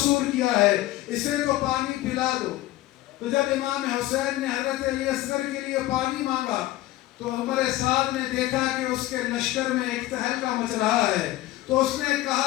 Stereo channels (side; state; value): right; quieter; 16.3 dB